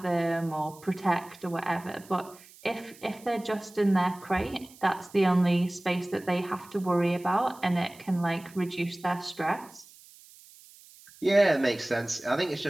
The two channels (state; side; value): noise; right; hiss, 23 dB below the sound